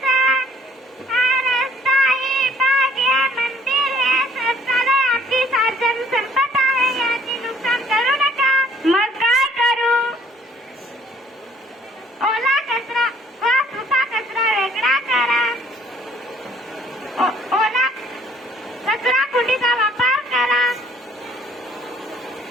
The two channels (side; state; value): both; normal; correlation 0.60